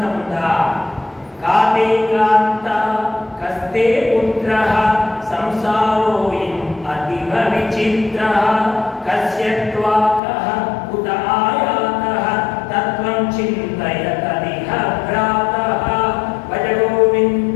ఉందా? కాతే కాంత కస్తే పుత్రః సంసారోయం అతివ విచిత్రః కస్యత్వాకః ఉత ఆయాతః తత్వం చింతయతదిహ భ్రాతః భజ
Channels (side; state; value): right; drops out; at 10.2 s